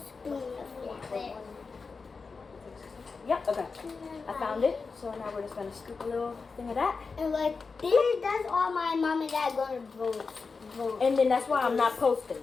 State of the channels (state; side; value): quieter; right; 4.6 dB